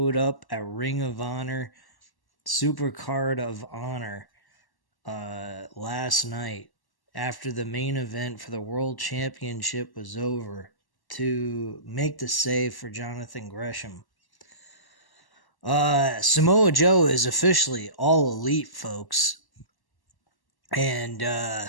up at Ring of Honor, Supercard of Honor, last night after the main event for the World Championship was over to make the save for Jonathan Gresham. Samoa Joe is officially all elite, folks. And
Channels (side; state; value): right; late; 1.1 ms